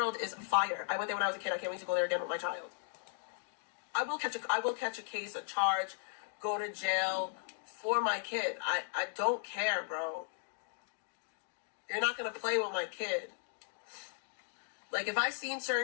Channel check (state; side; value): silent; right; digital silence